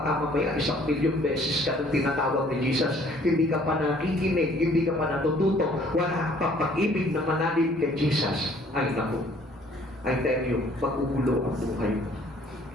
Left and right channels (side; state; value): both; normal; correlation 0.58